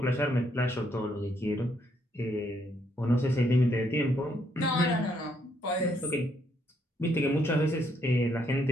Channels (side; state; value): both; normal; correlation 0.72